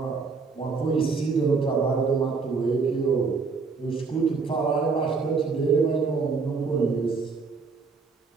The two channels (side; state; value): left; quieter; 4.7 dB